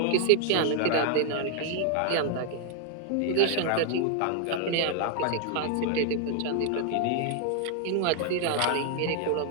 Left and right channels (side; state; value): both; different; correlation 0.00